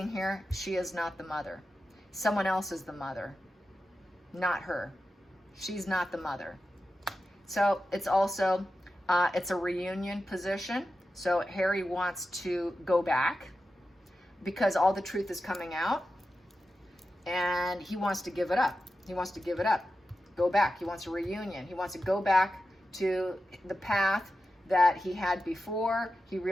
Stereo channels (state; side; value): normal; both; correlation 0.92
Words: here, she is not the mother. Someone else is the mother, not her. She's not the mother. So it's also, it's a reunion position. So Harry wants to go back because all the truth is coming out, and he wants to give it up. He wants to give it up, go back. He wants a reunion. He wants to go back to the path that he had before. He